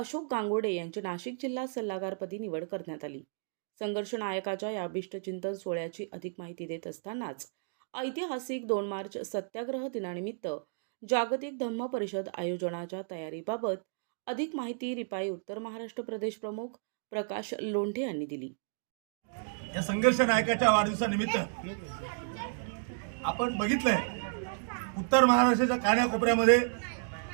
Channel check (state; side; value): silent; left; digital silence